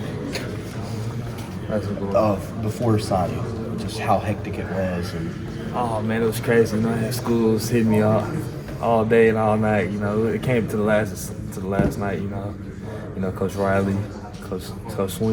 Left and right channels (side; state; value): both; identical; correlation 1.00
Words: before signing, just how hectic it was. And oh man, it was crazy. You know, I had schools hitting me all day and all night. You know, it came to the last night. You know, Coach Riley, Coach